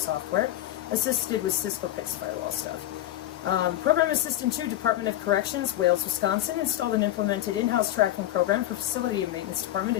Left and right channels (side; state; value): right; quieter; 13.8 dB